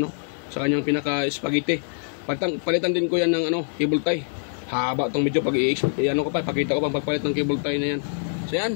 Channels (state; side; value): silent; right; digital silence